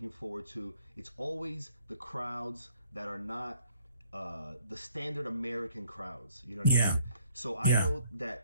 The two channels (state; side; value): inverted; both; correlation -0.63